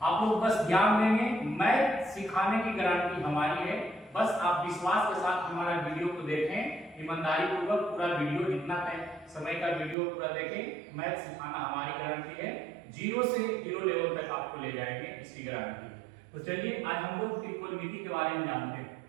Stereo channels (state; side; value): drops out; left; at 10.0 s